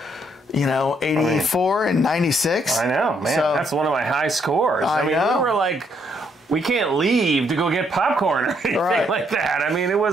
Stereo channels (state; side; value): normal; both; correlation 0.72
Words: 84 and 96. I know, man. So, that's one of my high scores. I mean, we were like, we can't leave to go get popcorn or anything like that. I mean, it